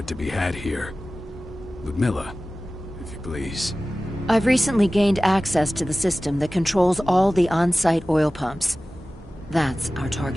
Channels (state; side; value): normal; both; correlation 0.96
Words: to be had here. Ludmilla, if you please. I've recently gained access to the system that controls all the on-site oil pumps. That's our